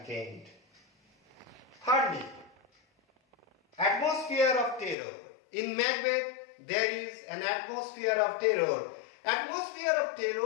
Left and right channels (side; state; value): right; drops out; at 5.0 s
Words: end. Thirdly, atmosphere of terror. In Macbeth, there is an atmosphere of terror. Atmosphere of